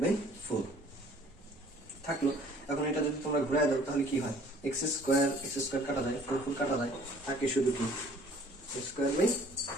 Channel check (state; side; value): normal; both; correlation 0.54